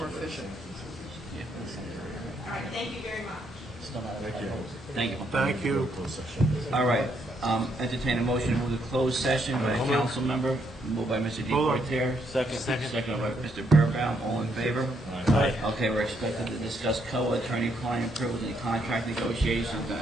efficient. All right, thank you very much. Thank you. Thank you. All right, entertain a motion to move to closed session by a council member, moved by Mr. Hold on. Deportaire. Second. Second by Mr. Burbaum, all in favor? Aye. Okay, we're expected to discuss COA attorney-client privilege and contract negotiations, and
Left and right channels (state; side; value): normal; both; correlation 0.74